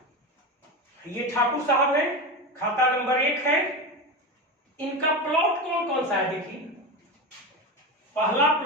ये ठाकुर साहब है, खाता नंबर 1 है, इनका प्लॉट कौन कौन सा है देखिए। पहला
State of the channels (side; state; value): both; normal; correlation 0.21